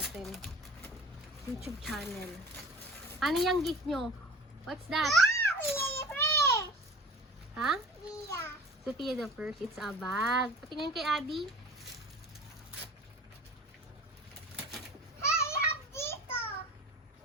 YouTube channel. Ano yung gift nyo? What's that? Ha? Sophia the First. It's a bag. Patingin kay Adi.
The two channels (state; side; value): normal; both; correlation 0.42